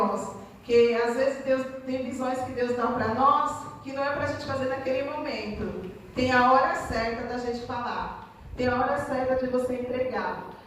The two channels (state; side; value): identical; both; correlation 1.00